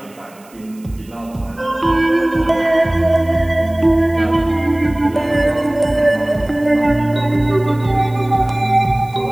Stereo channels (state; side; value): noise; right; hiss, 27 dB below the sound